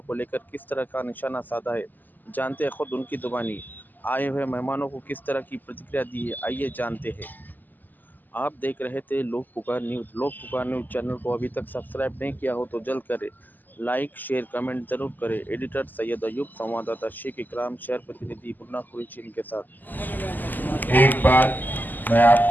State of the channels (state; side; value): late; right; 0.086 ms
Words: को लेकर किस तरह का निशाना साधा है, जानते हैं खुद उनकी जुबानी। आए हुए मेहमानों को किस तरह की प्रतिक्रिया दी है, आइए जानते हैं। आप देख रहे थे लोक पुकार न्यूज़। लोक पुकार न्यूज़ चैनल को अभी तक सब्सक्राइब नहीं किया हो तो जल्द करें। लाइक, शेयर, कमेंट जरूर करें। एडिटर सैयद अयूब, संवाददाता शेख इकराम, शहर प्रतिनिधि मुन्ना कुरैशी के साथ। एक बात मैं